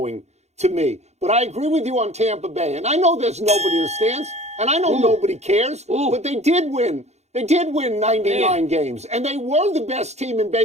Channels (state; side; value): late; left; 0.32 ms